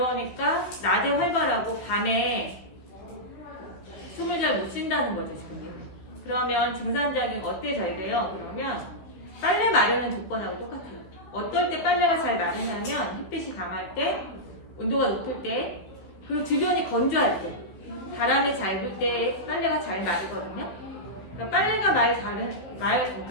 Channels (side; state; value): right; late; 16 ms